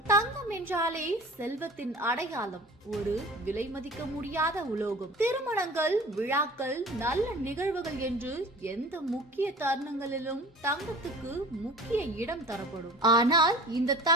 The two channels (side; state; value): both; normal; correlation 0.42